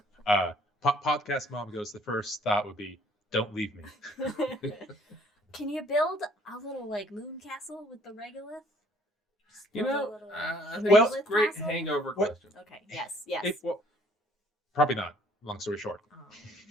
Podcast mom goes, the first thought would be, "Don't leave me." Can you build a little like moon castle with the regolith? Just build a little I think Well- it's a great castle? hangover What- question. Okay. Yes. Probably not. Long story short.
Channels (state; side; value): normal; both; correlation 0.60